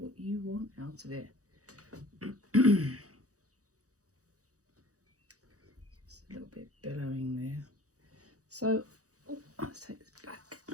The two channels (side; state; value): left; late; 0.66 ms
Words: you want out of it. Just a little bit billowing there. So, let's take this back.